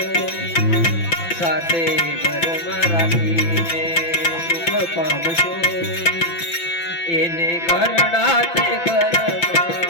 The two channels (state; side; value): late; right; 5.9 ms